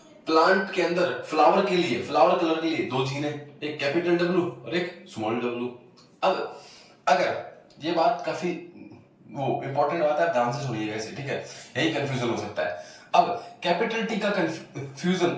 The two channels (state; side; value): identical; both; correlation 1.00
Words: प्लांट के अंदर फ्लावर के लिए फ्लावर कलर के लिए दो जीन है, एक कैपिटल डब्ल्यू और एक स्मॉल डब्ल्यू। अब अगर ये बात काफी वो इंपॉर्टेंट बात है, ध्यान से सुनिएगा इसे, ठीक है? यही कंफ्यूजन हो सकता है। अब कैपिटल टी का कंफ्यूजन